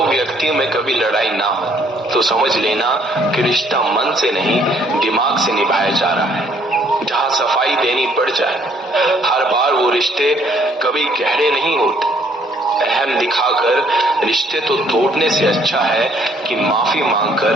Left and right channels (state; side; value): normal; both; correlation 0.64